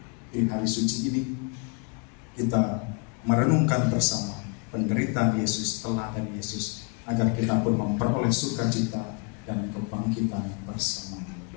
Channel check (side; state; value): right; quieter; 33.3 dB